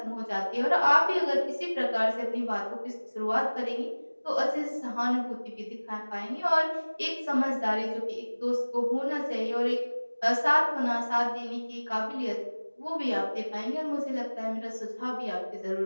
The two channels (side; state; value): both; inverted; correlation -1.00